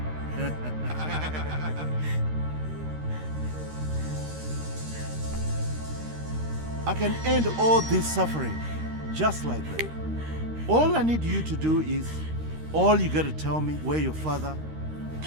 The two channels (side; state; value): left; late; 13 ms